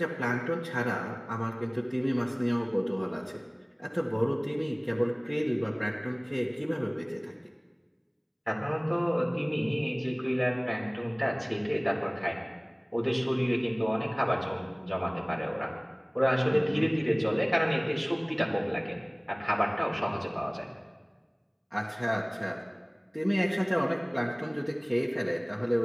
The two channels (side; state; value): both; identical; correlation 1.00